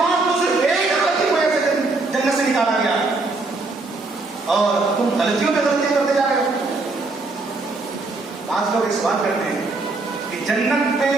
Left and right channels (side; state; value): left; quieter; 3.4 dB